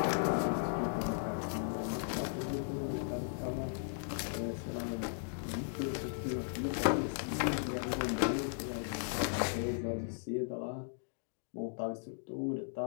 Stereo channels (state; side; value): silent; right; digital silence